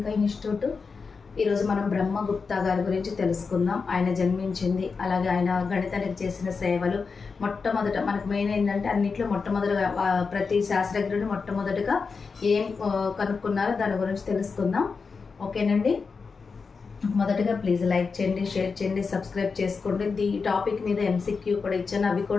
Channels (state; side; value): quieter; right; 4.9 dB